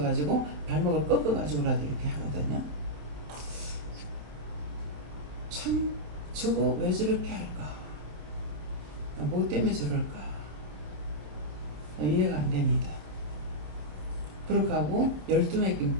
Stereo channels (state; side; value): late; left; 27 ms